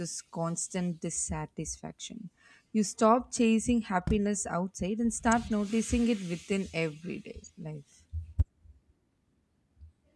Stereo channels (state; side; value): identical; both; correlation 1.00